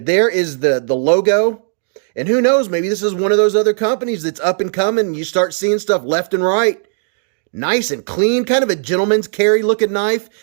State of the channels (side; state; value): left; silent; digital silence